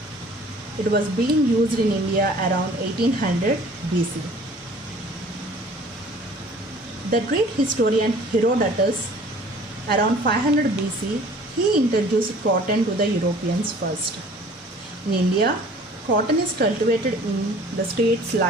It was being used in India around 1800 BC. The Greek historian Herodotus, around 500 BC, he introduced cotton to the Europeans first. In India, cotton is cultivated in the states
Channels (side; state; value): both; normal; correlation 0.50